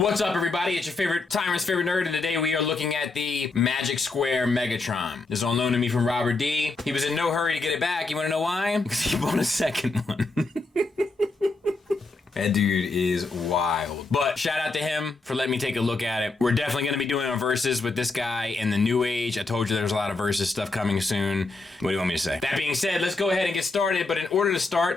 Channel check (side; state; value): right; quieter; 3.5 dB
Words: What's up, everybody? It's your favorite timer's favorite nerd, and today we are looking at the Magic Square Megatron. This is on loan to me from Robert D. He was in no hurry to get it back. You want to know why? Because he bought a second one. That dude is wild. But shout out to him for letting me take a look at it. We're definitely going to be doing a versus with this guy in the new age. I told you there's a lot of versus stuff coming soon. What do you want me to say? That being said, let's go ahead and get started. But in order to